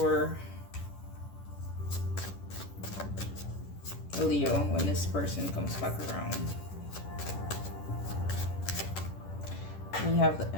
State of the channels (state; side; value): late; right; 10 ms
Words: Leo when this person comes back around? We have the